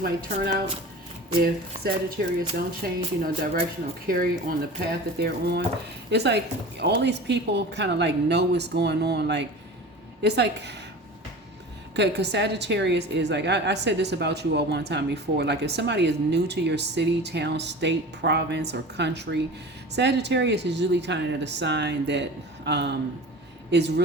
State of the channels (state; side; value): normal; both; correlation 0.36